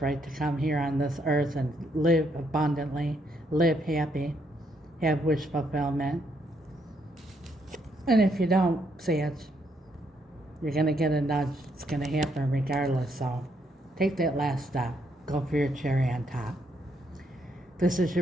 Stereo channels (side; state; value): both; normal; correlation 0.74